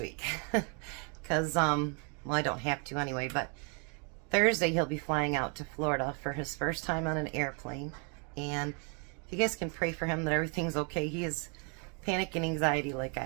because, well, I don't have to anyway, but Thursday he'll be flying out to Florida for his first time on an airplane, and if you guys can pray for him that everything's okay. He has panic and anxiety like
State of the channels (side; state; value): left; quieter; 36.9 dB